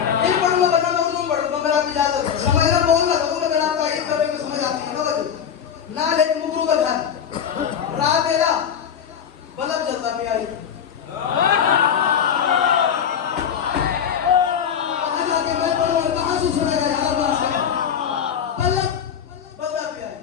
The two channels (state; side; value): quieter; right; 8.1 dB